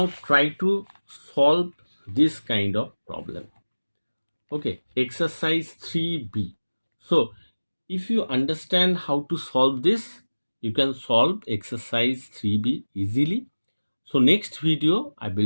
try to solve this kind of problem. Okay, exercise 3b. So if you understand how to solve this, you can solve exercise 3b easily. So next video I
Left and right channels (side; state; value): both; inverted; correlation -1.00